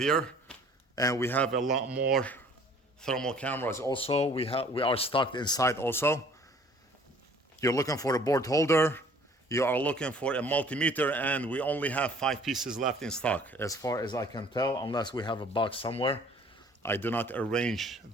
And we have a lot more thermal cameras also. We are stocked inside also. You're looking for a board holder, you are looking for a multimeter, and we only have 5 pieces left in stock, as far as I can tell, unless we have a box somewhere. I do not arrange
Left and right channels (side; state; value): both; normal; correlation 0.54